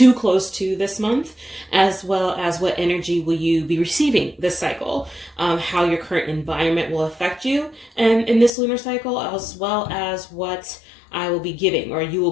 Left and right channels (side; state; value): right; drops out; at 8.5 s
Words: close to this month, as well as what energy will you be receiving this cycle, how your current environment will affect you and in this lunar cycle, as well as what I will be giving or you will